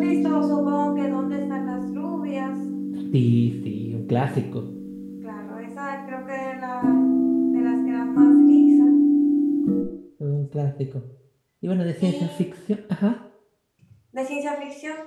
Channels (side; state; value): both; identical; correlation 1.00